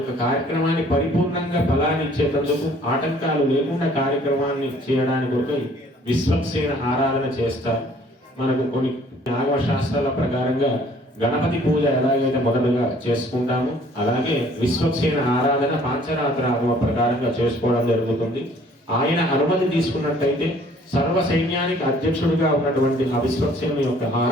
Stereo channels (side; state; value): both; normal; correlation 0.57